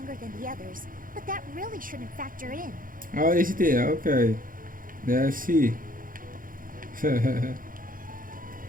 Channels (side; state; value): left; late; 0.40 ms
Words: than the others, but that really shouldn't factor in. Oh, is it here? Okay. Yeah, I see. Can